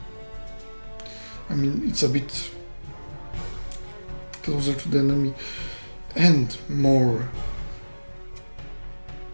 I mean, it's a bit closer to the enemy and more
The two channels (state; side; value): inverted; both; correlation -1.00